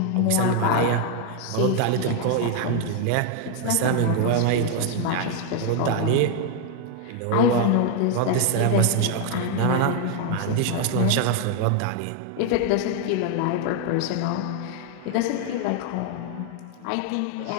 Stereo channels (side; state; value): both; different; correlation 0.01